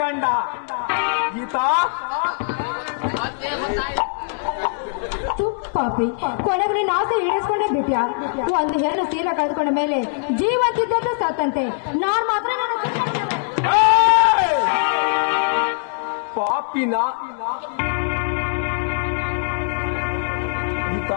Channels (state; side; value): silent; right; digital silence